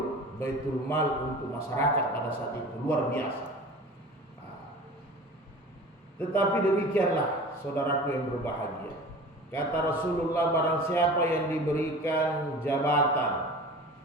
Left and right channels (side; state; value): both; normal; correlation 0.39